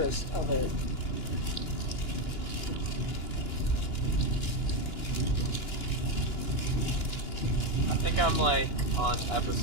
of it. I think I'm like on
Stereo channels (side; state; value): right; late; 2.9 ms